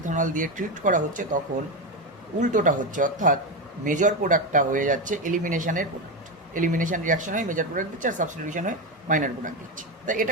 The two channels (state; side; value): normal; both; correlation 0.14